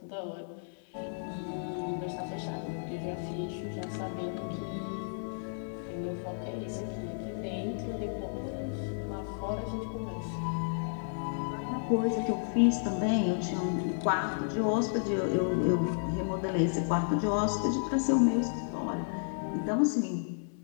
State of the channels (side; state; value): right; silent; 56 dB below the other